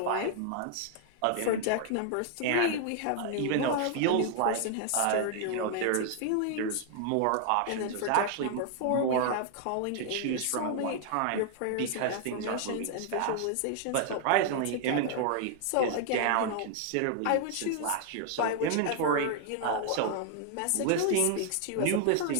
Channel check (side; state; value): both; different; correlation 0.00